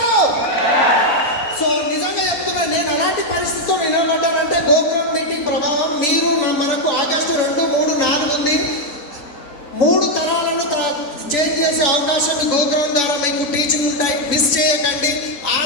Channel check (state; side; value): late; right; 3.5 ms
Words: సో నిజంగా చెప్తున్నా, నేను అలాంటి పరిస్థితితో నిలబడ్డానంటే గోకురం మీటింగ్ ప్రభావం. మీరు మనకు ఆగస్టు 2, 3, 4 ఉంది. 3 తరాలను చేంజ్ చేసే అవకాశం ఈ గోకురం ద్వారా మీకు టీచింగ్ ఉంటాయి. మిస్ చేయకండి.